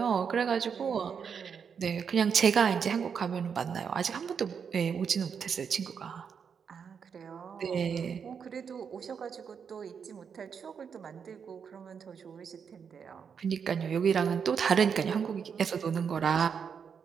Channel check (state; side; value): quieter; left; 6.7 dB